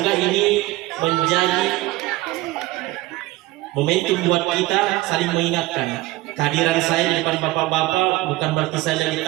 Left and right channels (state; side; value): quieter; left; 18.8 dB